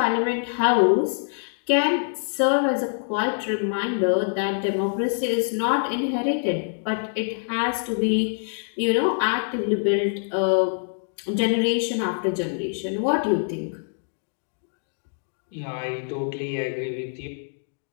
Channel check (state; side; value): silent; right; digital silence